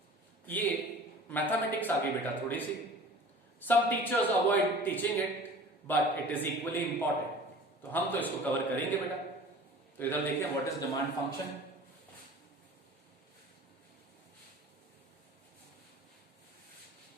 ये मैथमेटिक्स आगे बेटा थोड़ी सी, some teachers avoid teaching it but it is equally important, तो हम तो इसको कवर करेंगे बेटा। तो इधर देखिए what is demand function.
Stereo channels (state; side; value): normal; both; correlation 0.43